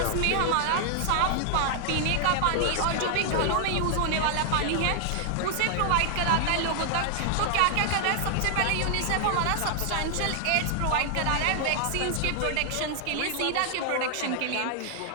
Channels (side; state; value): both; different; correlation 0.00